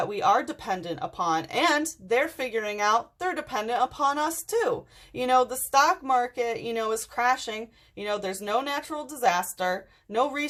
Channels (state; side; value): identical; both; correlation 1.00